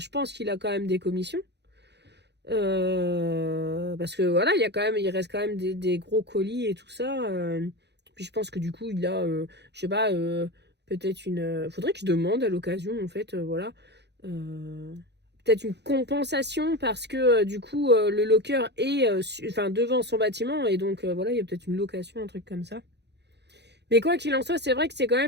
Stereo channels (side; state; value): left; late; 0.50 ms